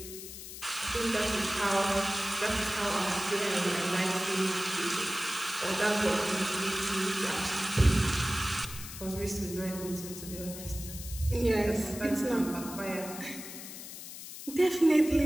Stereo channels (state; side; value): noise; left; hiss, 11 dB below the sound